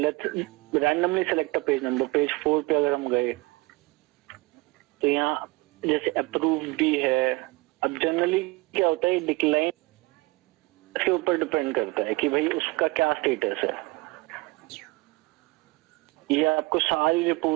randomly select a page number. Page 4 पे अगर हम गए तो यहाँ जैसे अप्रूव भी है। अब जनरली क्या होता है, डिक्लाइन के ऊपर डिपेंड करता है कि भाई उसका क्या स्टेटस है। ये आपको सारी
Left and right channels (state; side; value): quieter; left; 23.3 dB